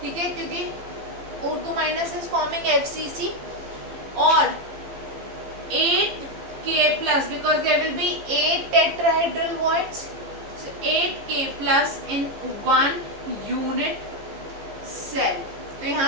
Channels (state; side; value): late; left; 15 ms